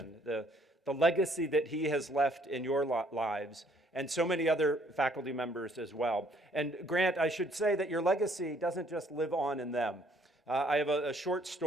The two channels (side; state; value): both; normal; correlation 0.63